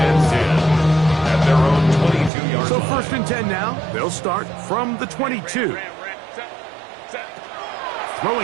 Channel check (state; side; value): drops out; left; at 2.3 s